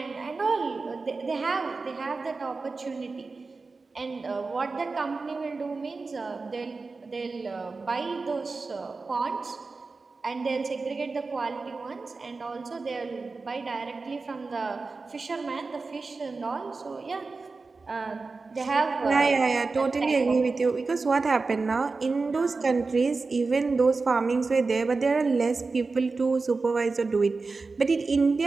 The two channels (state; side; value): quieter; left; 4.0 dB